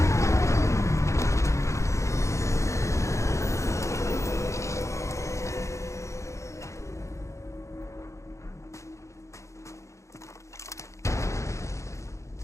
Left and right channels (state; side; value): late; right; 0.14 ms